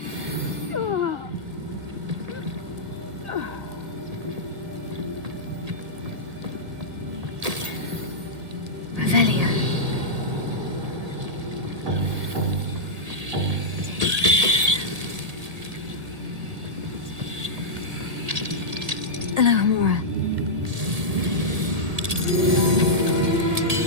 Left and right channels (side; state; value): left; late; 1.8 ms